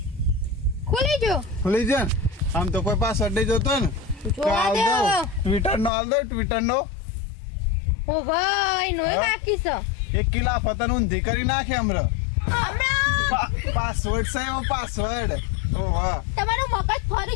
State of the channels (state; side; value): drops out; right; at 5.9 s